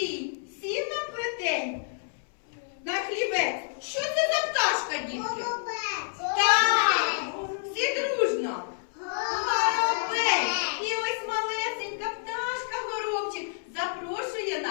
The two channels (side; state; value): right; silent; 59 dB below the other